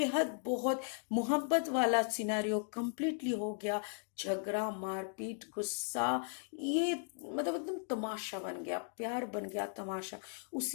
बहुत मोहब्बत वाला सिनेरियो कंप्लीटली हो गया। झगड़ा, मारपीट, गुस्सा, ये मतलब एकदम तमाशा बन गया, प्यार बन गया तमाशा।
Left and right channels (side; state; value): right; silent; 53 dB below the other